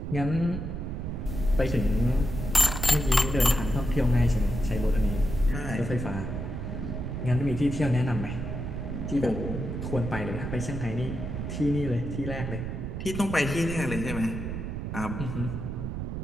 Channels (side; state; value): right; noise; rumble, 4 dB below the sound